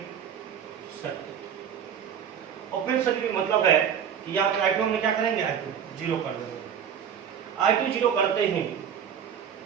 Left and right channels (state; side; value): quieter; left; 8.3 dB